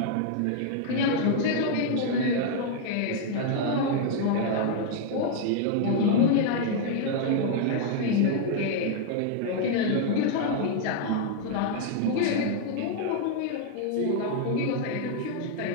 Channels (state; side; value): different; both; correlation 0.00